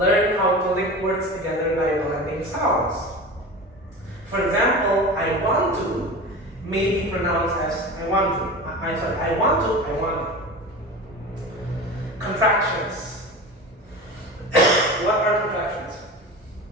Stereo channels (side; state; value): both; normal; correlation 0.31